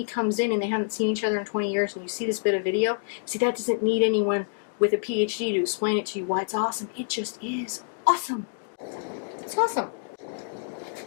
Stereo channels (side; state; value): right; silent; digital silence